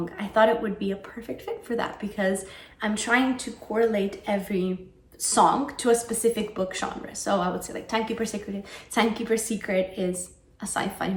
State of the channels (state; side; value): identical; both; correlation 1.00